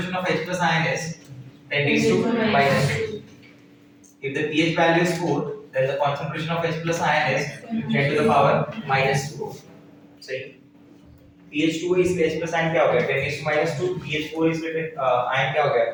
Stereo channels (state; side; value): identical; both; correlation 1.00